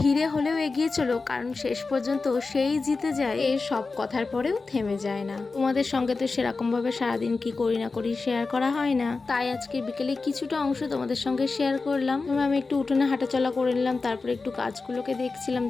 ধীরে হলেও এগিয়ে চলো, কারণ শেষ পর্যন্ত সেই জিতে যায়, এর সব কথার পরেও থেমে যায় না। তোমাদের সঙ্গে তো সেরকম ভাবে সারাদিন কি করি না করি শেয়ার করা হয় না, তাই আজকে বিকেলে কিছুটা অংশ তোমাদের সঙ্গে শেয়ার করলাম। আমি একটু উঠোনে হাঁটাচলা করে নিলাম, তারপরে একটু গাছগুলোকে দেখছিলাম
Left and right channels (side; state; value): right; quieter; 4.0 dB